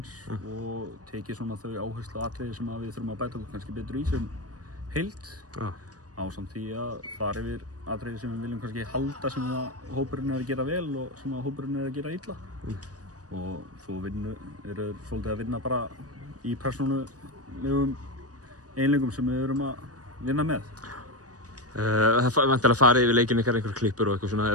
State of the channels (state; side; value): late; left; 0.68 ms